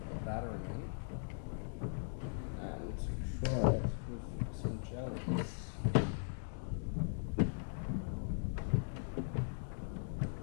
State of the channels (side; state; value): right; silent; digital silence